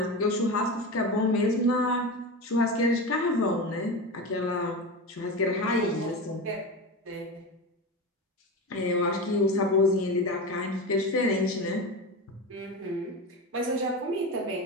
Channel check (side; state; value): both; normal; correlation 0.23